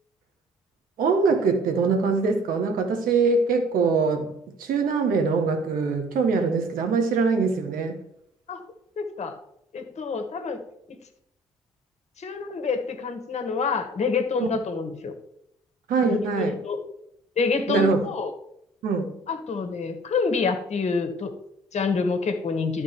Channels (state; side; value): normal; both; correlation 0.51